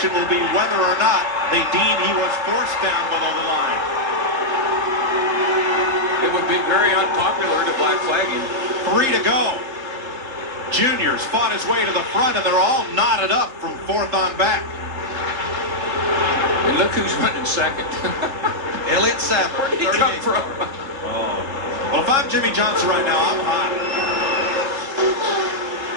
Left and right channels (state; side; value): late; left; 3.7 ms